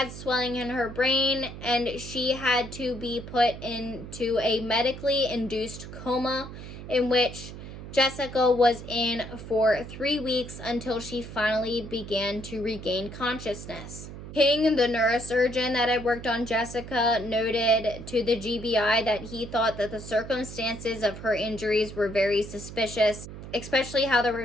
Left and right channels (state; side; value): noise; right; hum, 12 dB below the sound